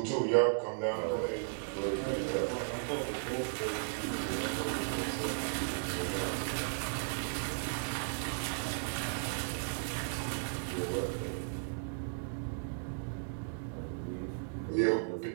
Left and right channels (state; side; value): silent; left; digital silence